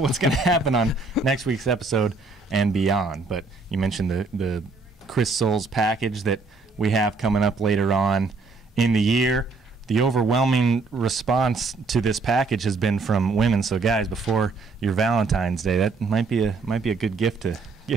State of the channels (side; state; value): left; quieter; 3.9 dB